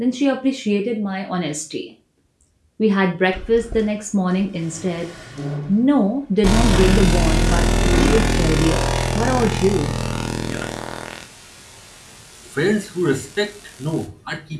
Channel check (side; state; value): both; identical; correlation 1.00